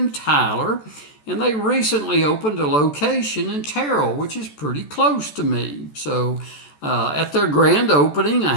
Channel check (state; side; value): late; right; 14 ms